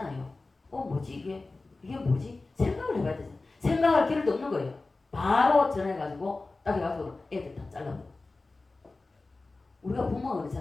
뭐지 이게 뭐지? 생각을 해봐야 되잖아요. 생각할 기회도 없는 거예요. 바로 전화해가지고 딱 해가지고 애들 다 잘라버려. 우리가 부모가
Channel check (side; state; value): right; quieter; 3.4 dB